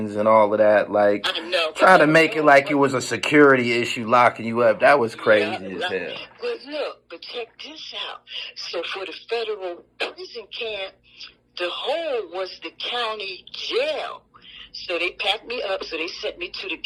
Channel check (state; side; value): identical; both; correlation 1.00